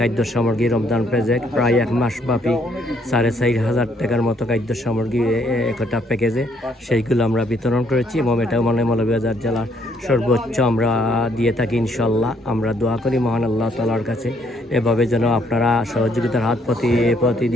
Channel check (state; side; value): normal; both; correlation 0.68